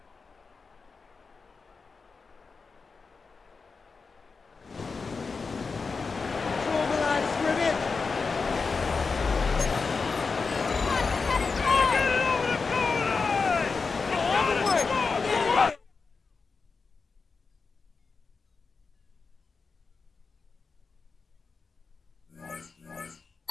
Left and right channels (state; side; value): quieter; right; 4.7 dB